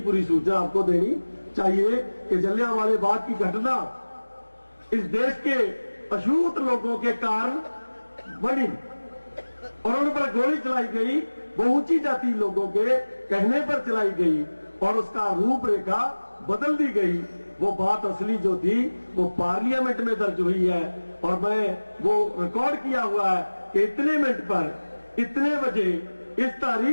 सूचना आपको देनी चाहिए कि जलियांवाले बाग की घटना इस देश के अछूत लोगों के कारण बनी और उन पर गोली चलाई गई। वो ऊंची जाति लोगों के कहने पर चलाई गई और उसका रूपरेखा बदल दी गई। वो बात असली जो थी वो पार्लियामेंट में दर्ज हुई है और मैं वो रिकॉर्ड किया हुआ है कि इतने मिनट पर इतने बजे इस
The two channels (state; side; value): inverted; both; correlation -1.00